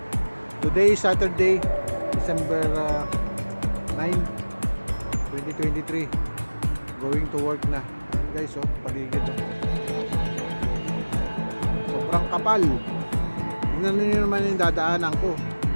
Today is Saturday, December 9, 2023. Going to work na. Guys, paligid. Sobrang kapal. Tingnan niyo naman yung dadaanan ko.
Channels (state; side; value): inverted; both; correlation -1.00